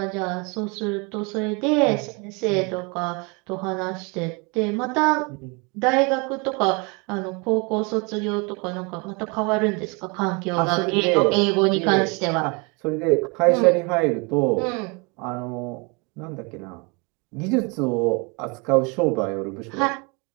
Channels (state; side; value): quieter; left; 30.4 dB